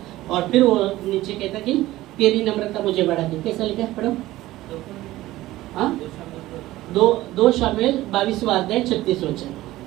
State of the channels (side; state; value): left; quieter; 16.6 dB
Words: और फिर वो नीचे कहता है कि तेरी नम्रता मुझे बढ़ाती है। कैसा लिखा है पढ़ो? हाँ, 2 शमूएल 22वां अध्याय 36 वचन।